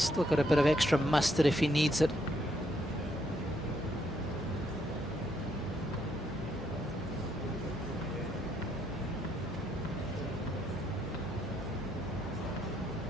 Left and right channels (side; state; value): both; normal; correlation 0.74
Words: got a bit of extra mustard if he needs it.